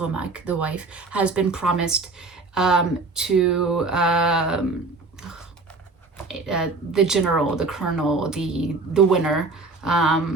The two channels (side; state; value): left; quieter; 3.6 dB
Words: the wife, has been promised to the general, the colonel, the winner. I